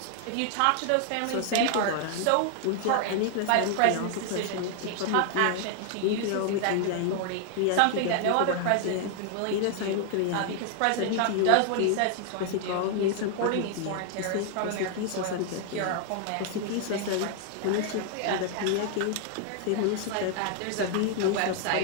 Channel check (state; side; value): different; both; correlation 0.00